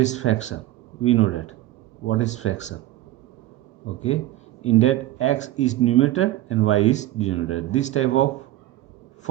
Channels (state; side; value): quieter; left; 15.2 dB